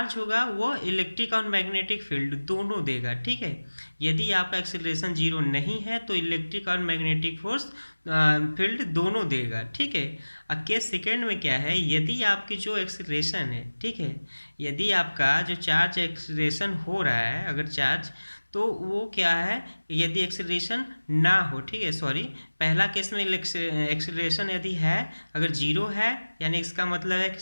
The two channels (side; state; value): both; inverted; correlation -1.00